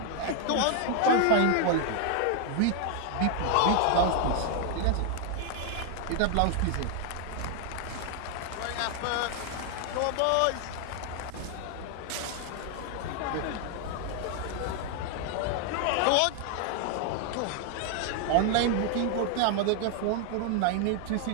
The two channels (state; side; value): different; both; correlation 0.00